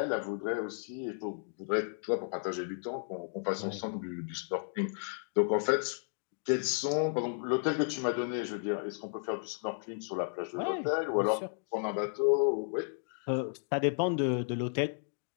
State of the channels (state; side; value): silent; right; digital silence